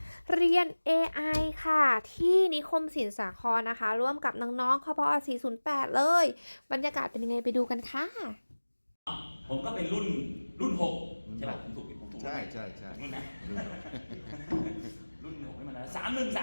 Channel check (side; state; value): both; inverted; correlation -1.00